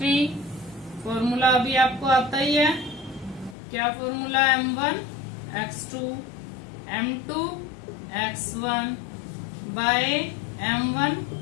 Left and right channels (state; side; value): drops out; right; at 3.6 s